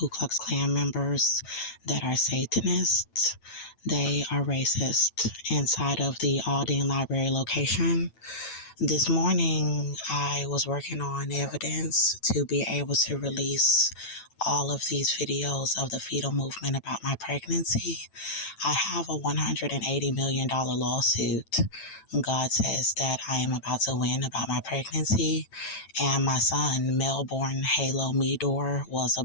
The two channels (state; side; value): late; right; 9.0 ms